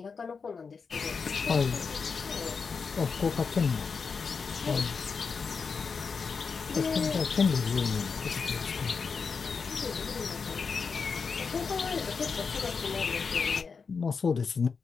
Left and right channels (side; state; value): right; quieter; 5.3 dB